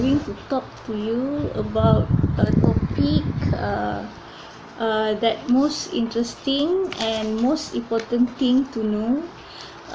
to talk to you about a topic that most interesting and most important thing to know.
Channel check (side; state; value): both; identical; correlation 1.00